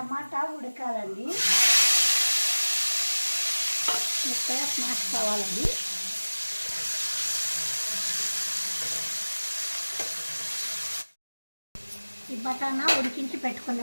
ఉడకాలండి, మెత్తగా స్మాష్ కావాలండి. ఈ బటానా ఉడికించి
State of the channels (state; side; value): inverted; both; correlation -1.00